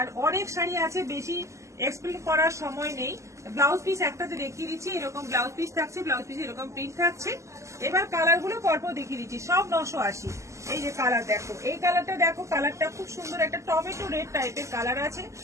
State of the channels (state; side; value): late; left; 0.14 ms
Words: অনেক শাড়ি আছে, বেশি এক্সপ্লেন করার সময় নেই। ব্লাউজ পিস একটাতে দেখিয়ে দিচ্ছি, এরকম ব্লাউজ পিস থাকছে, ব্লাউজ পিস এরকম প্রিন্ট থাকছে। এবার কালার গুলো পরপর দেখিয়ে দিচ্ছি, সব 980। এই যে কালার দেখো, এই কালারটা দেখো, কালারটা খুব সুন্দর, একটা টমেটো রেড টাইপের কালার আছে।